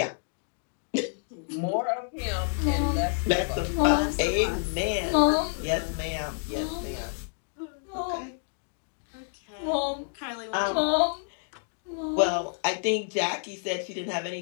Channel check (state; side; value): silent; right; 59 dB below the other